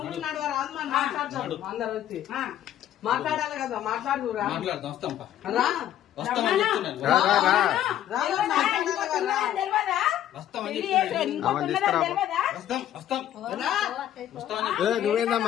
మాట్లాడాలి కదా, మాట్లాడురా.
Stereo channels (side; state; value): right; quieter; 11.6 dB